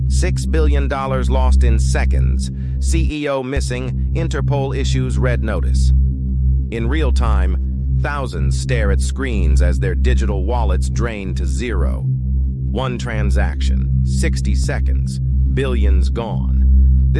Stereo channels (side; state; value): both; identical; correlation 1.00